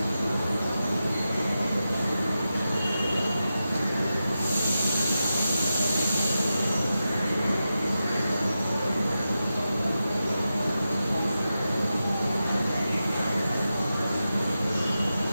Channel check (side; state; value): both; inverted; correlation -0.91